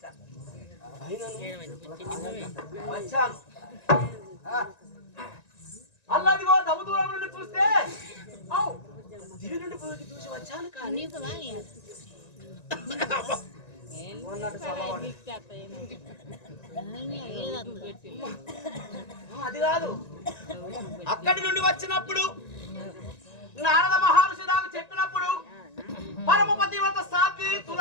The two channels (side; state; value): right; late; 1.9 ms